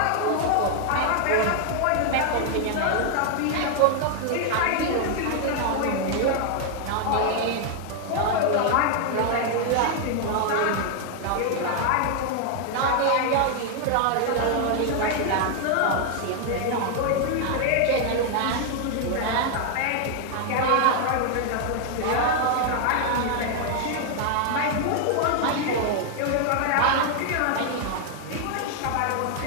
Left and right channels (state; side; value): different; both; correlation 0.00